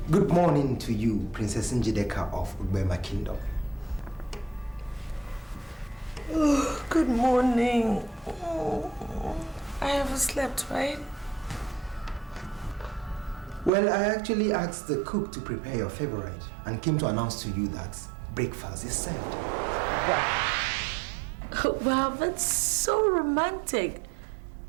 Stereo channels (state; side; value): drops out; left; at 13.7 s